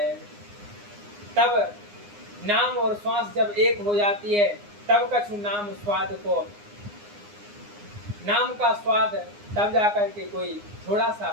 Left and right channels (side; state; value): left; late; 9.7 ms